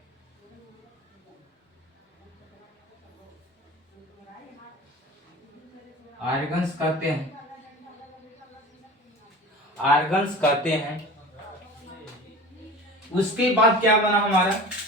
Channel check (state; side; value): normal; both; correlation 0.37